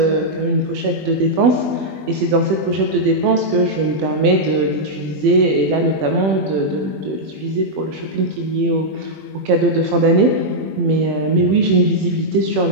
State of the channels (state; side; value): late; left; 21 ms